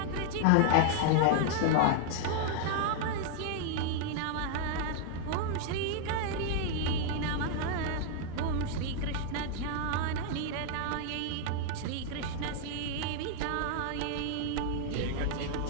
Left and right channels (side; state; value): both; different; correlation 0.00